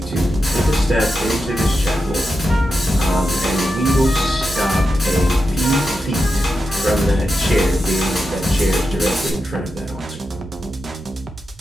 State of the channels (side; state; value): both; normal; correlation 0.88